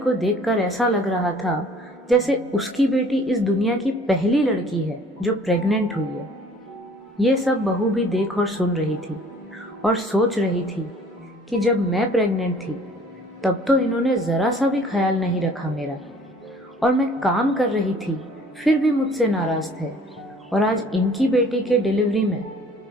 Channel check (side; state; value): both; normal; correlation 0.53